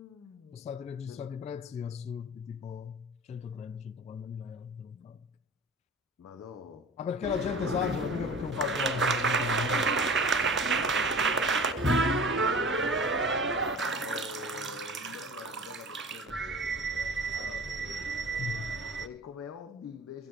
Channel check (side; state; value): both; normal; correlation 0.40